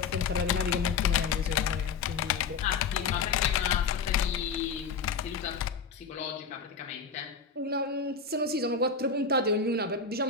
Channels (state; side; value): quieter; right; 5.3 dB